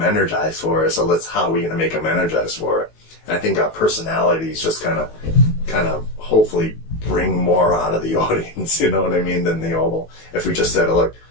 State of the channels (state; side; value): late; right; 18 ms